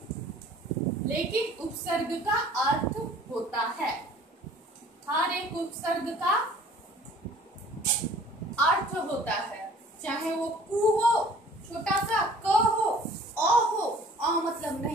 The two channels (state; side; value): normal; both; correlation 0.51